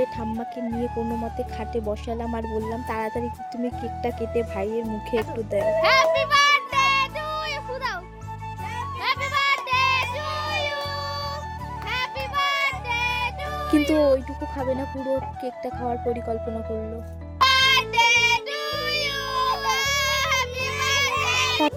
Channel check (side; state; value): both; identical; correlation 1.00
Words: ঠাম্মাকে নিয়ে কোনো মতে খাটে বসালাম আর বললাম, তাড়াতাড়ি তুমি কেকটা কেটে ভাইয়ের মুখে একটু দাও। হ্যাপি বার্থডে টু ইউ ফুদাও। Happy birthday to you. Happy birthday to. কিন্তু ওইটুকু খাবে না, পুরো কেকটা খাওয়ার পরিকল্পনা করলো। Birthday to you. Happy birthday.